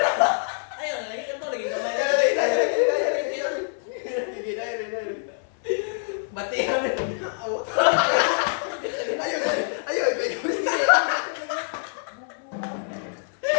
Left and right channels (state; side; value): silent; right; 62 dB below the other